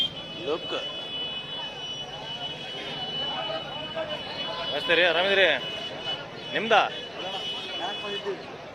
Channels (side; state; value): both; identical; correlation 1.00